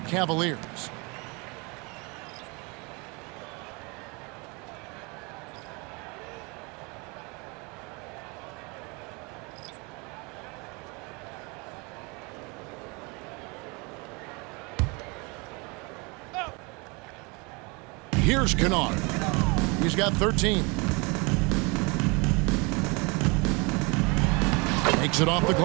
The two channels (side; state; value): left; quieter; 29.0 dB